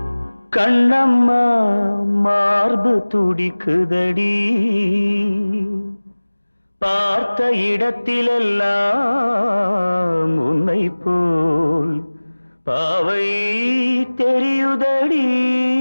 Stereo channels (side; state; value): both; inverted; correlation -1.00